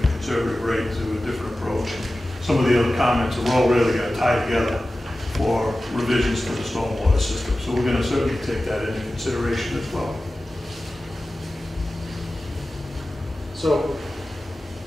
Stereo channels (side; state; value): both; normal; correlation 0.95